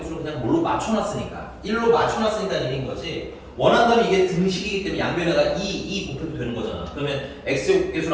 그냥 뭘로 맞춰놨으니까 1로 맞춰놨으니까 1인 거지 원한다면 이게 등식이기 때문에 양변에다가 2 곱해도 되는 거잖아. 그러면 x제곱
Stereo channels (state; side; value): identical; both; correlation 1.00